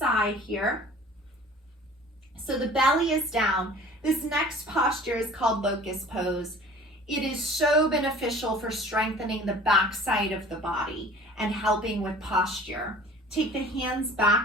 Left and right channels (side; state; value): both; normal; correlation 0.46